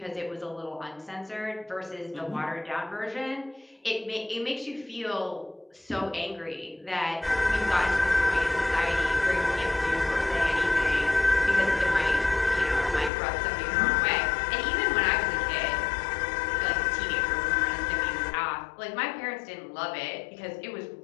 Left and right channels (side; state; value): right; drops out; at 13.1 s